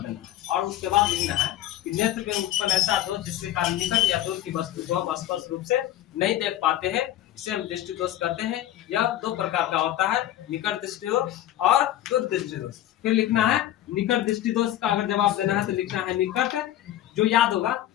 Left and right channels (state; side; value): quieter; right; 13.1 dB